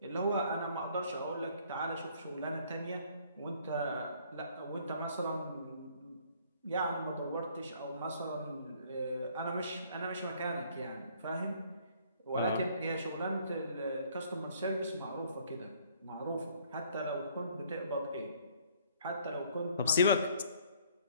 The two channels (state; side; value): inverted; both; correlation -0.61